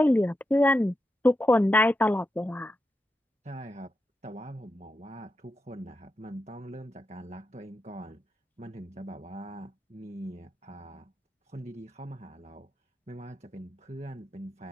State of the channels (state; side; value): normal; both; correlation 0.88